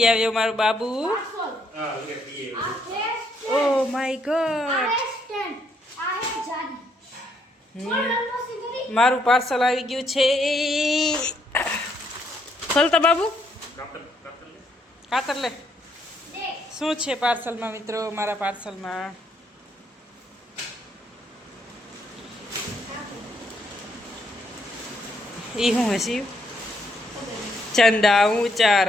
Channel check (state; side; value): normal; both; correlation 0.72